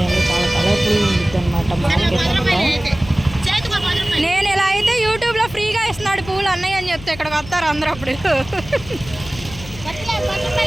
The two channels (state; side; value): noise; left; hum, 15 dB below the sound